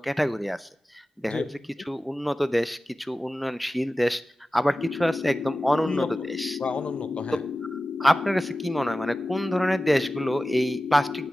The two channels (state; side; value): normal; both; correlation 0.95